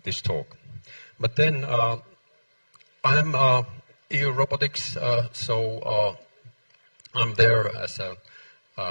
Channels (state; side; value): inverted; both; correlation -1.00